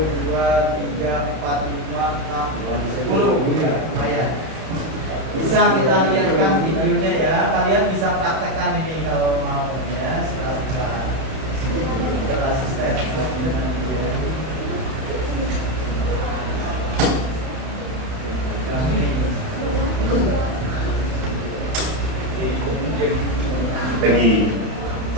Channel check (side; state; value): left; late; 31 ms